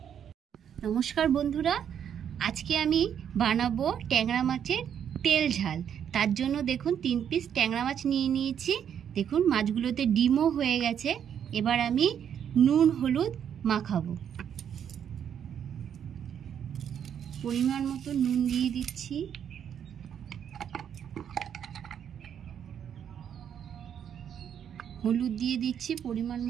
নমস্কার বন্ধুরা, আজকে আমি বানাবো ট্যাংরা মাছের তেল ঝাল। তার জন্য দেখুন 3 পিস ট্যাংরা মাছ নিয়ে নিয়েছি। দেখুন মাছগুলোতে ডিমও হয়ে গেছে। এবার আমি নুন হলুদ মাখাবো। পরিমাণ মতো নুন দিয়ে দিচ্ছি। হলুদ দিয়ে দিচ্ছি পরিমাণ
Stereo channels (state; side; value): quieter; left; 8.7 dB